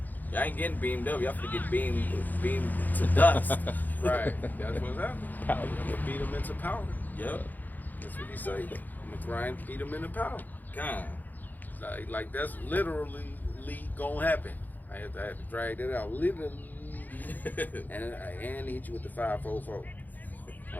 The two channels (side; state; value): right; late; 0.084 ms